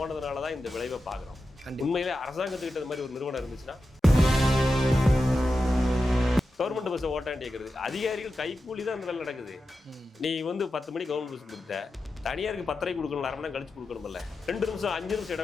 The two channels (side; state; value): both; normal; correlation 0.91